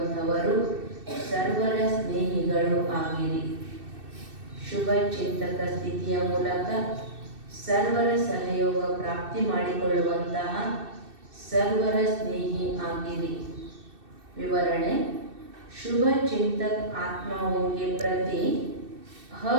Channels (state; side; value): late; left; 2.6 ms